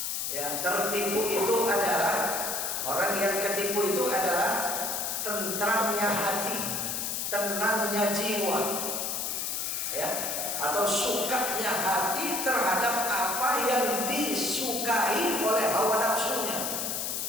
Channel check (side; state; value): left; noise; hiss, 2 dB below the sound